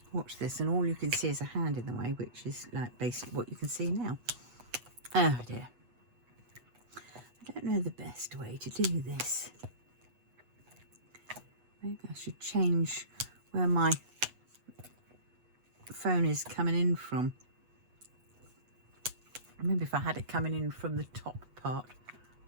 watch this and all you can see is a hand in the way, which is like basically what you can see now. Oh dear. I don't know the best way to do this. Maybe I should change where my phone is coming in from. Maybe if I had it coming in from the top part,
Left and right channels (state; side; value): late; left; 8.2 ms